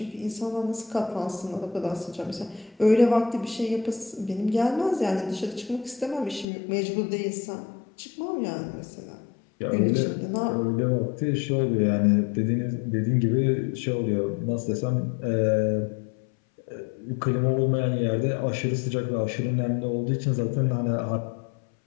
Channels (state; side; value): drops out; right; at 6.5 s